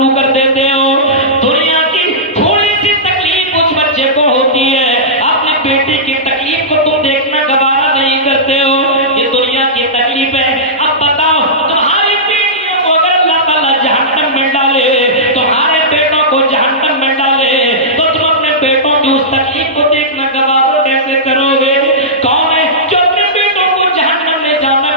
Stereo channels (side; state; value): both; normal; correlation -0.15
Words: کر دیتے ہو۔ دنیا کی تھوڑی سی تکلیف اس بچے کو ہوتی ہے، اپنے بیٹے کی تکلیف کو تم دیکھنا گوارا نہیں کرتے ہو۔ یہ دنیا کی تکلیف ہے۔ اب بتاؤ، تمہاری بیٹیوں کو اگر اللہ تعالیٰ جہنم میں ڈالے، تمہارے بیٹوں کو جہنم میں ڈالے، تو تم اپنے بیٹوں کی اس تکلیف کو دیکھنا گوارا کیسے کرو گے؟ کون ہے جو اپنے بیٹوں کو جہنم میں جانا